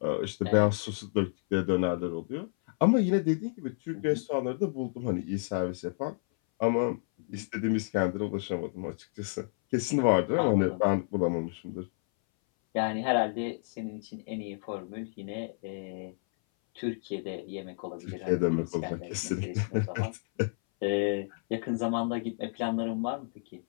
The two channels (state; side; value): silent; right; 57 dB below the other